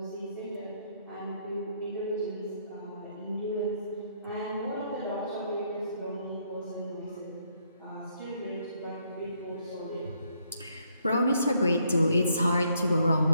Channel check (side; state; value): both; inverted; correlation -0.72